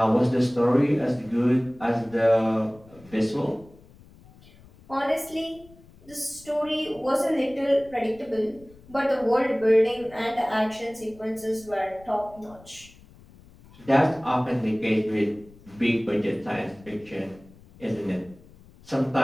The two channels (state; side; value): noise; left; rumble, 24 dB below the sound